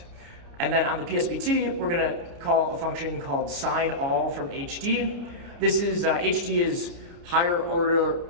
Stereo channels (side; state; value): left; late; 30 ms